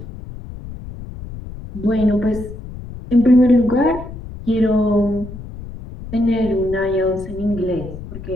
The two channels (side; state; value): left; noise; rumble, 12 dB below the sound